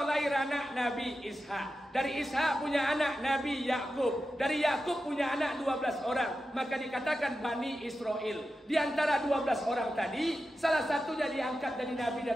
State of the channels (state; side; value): normal; both; correlation 0.91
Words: lahir anak Nabi Ishak. Dari Ishak punya anak Nabi Yakub. Dari Yakub punya anak 12 orang. Maka dikatakan Bani Israel. Di antara 12 orang tadi, salah satunya diangkat dari Nabi